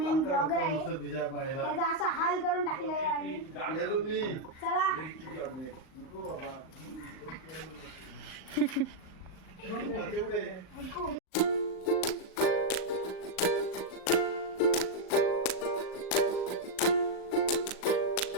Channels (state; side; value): late; right; 38 ms